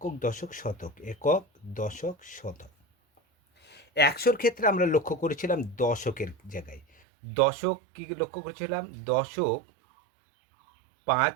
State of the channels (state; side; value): drops out; left; at 6.9 s